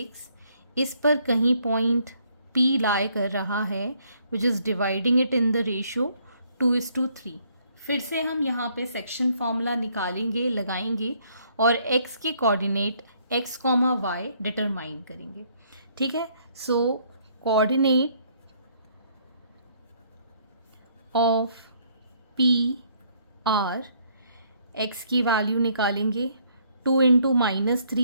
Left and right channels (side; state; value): both; inverted; correlation -0.67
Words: इस पर कहीं पॉइंट P लाई कर रहा है, which is dividing it in the ratio 2:3। फिर से हम यहाँ पे सेक्शन फॉर्मूला निकालेंगे, लगाएंगे और x के कोऑर्डिनेट x, y डिटरमाइन करेंगे। ठीक है, so coordinate of P are, x की वैल्यू निकालेंगे 2 into